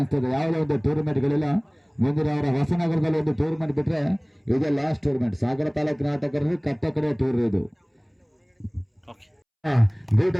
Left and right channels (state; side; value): identical; both; correlation 1.00